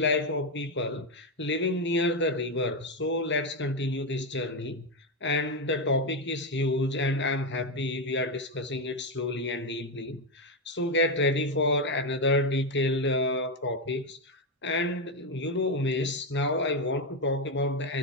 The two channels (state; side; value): normal; both; correlation 0.08